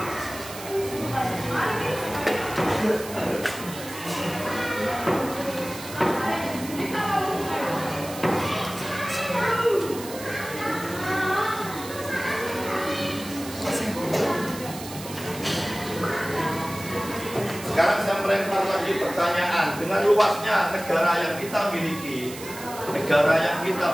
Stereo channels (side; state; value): right; noise; hiss, 13 dB below the sound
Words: Sekarang saya melempar lagi pertanyaan, dengan luasnya negara yang kita miliki, negara yang